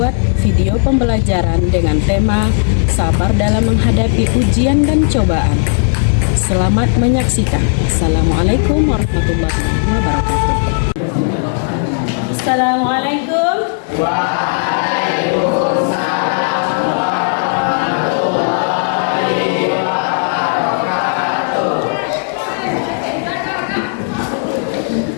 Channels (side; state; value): right; silent; digital silence